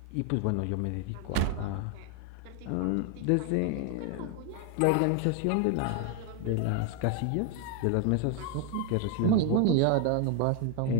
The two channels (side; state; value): both; different; correlation 0.01